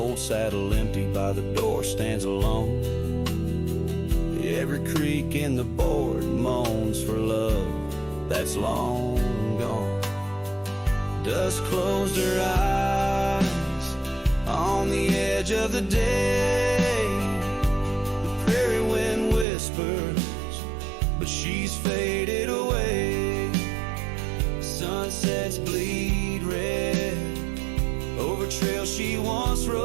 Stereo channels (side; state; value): left; drops out; at 19.5 s